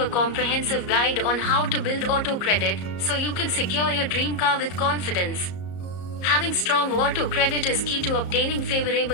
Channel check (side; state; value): right; late; 34 ms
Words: comprehensive guide on how to build auto credit so you can secure your dream car with confidence. Having strong auto credit is key to obtaining